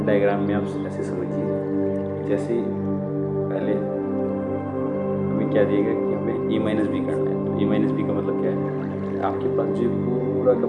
डायग्राम में आप ऐसे समझिए, जैसे पहले हमें क्या दिया गया कि हमें ए माइनस बी करना है, तो ए माइनस बी का मतलब क्या है, आपके पास जो पूरा का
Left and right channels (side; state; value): both; identical; correlation 1.00